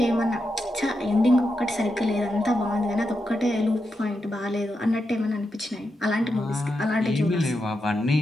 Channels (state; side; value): normal; both; correlation 0.86